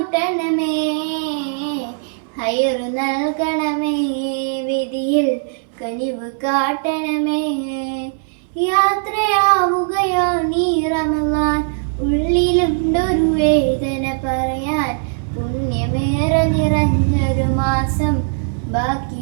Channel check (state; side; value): silent; left; 61 dB below the other